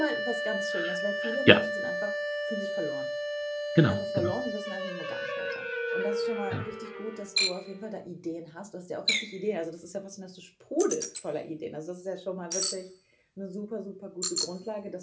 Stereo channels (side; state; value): both; identical; correlation 1.00